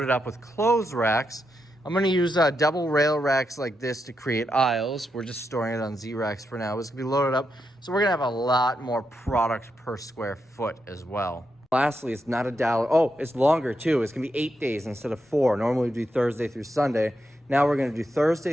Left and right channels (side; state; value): both; normal; correlation 0.84